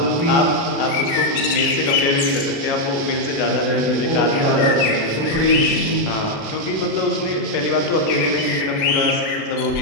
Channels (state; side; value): late; right; 36 ms